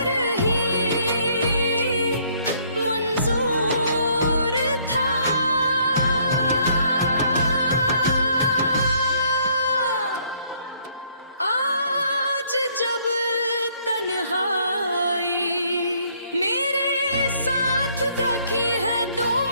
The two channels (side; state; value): both; inverted; correlation -0.65